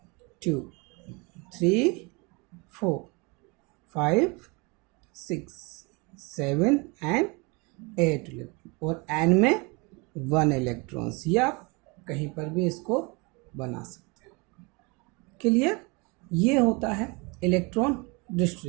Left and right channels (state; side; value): quieter; left; 28.5 dB